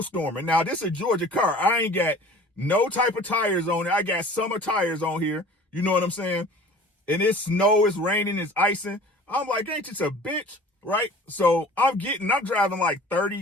Now this is a Georgia car. I ain't got no type of tires on it. I got summer tires on here. You know what I'm saying? And it's snow, it's raining, it's icing. I'm like, ain't this a bitch, right? So I'm driving like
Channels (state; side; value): normal; both; correlation 0.45